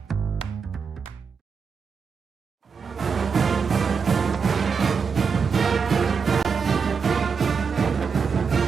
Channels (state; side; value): quieter; left; 5.8 dB